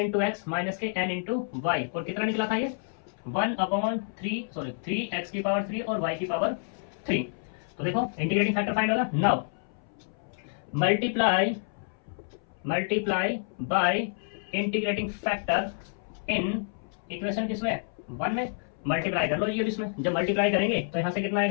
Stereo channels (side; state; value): right; silent; 59 dB below the other